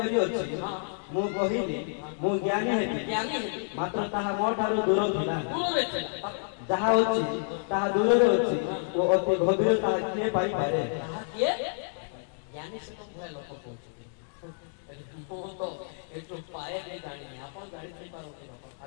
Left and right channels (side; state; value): right; silent; digital silence